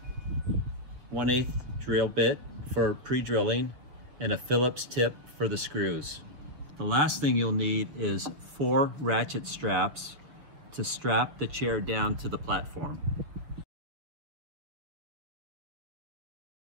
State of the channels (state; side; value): late; left; 6.4 ms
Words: 1/8 drill bit for pre-drilling, and a Phillips tip for the screws. The last thing you'll need is 4 ratchet straps to strap the chair down to the platform.